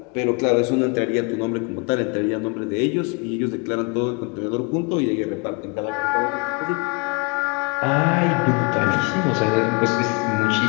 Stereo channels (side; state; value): right; quieter; 31.3 dB